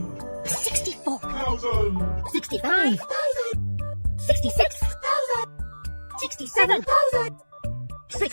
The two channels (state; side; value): inverted; both; correlation -1.00